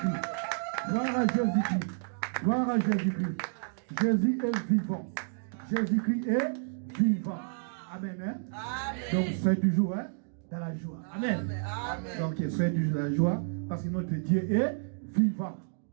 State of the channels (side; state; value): left; silent; digital silence